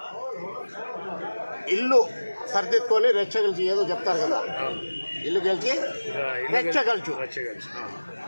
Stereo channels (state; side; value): inverted; both; correlation -1.00